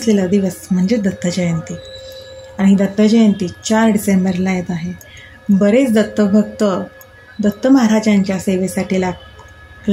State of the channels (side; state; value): both; identical; correlation 1.00